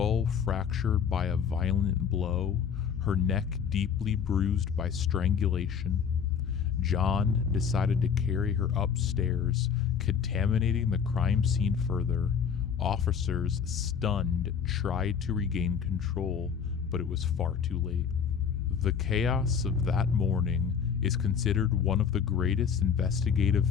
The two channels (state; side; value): quieter; right; 7.1 dB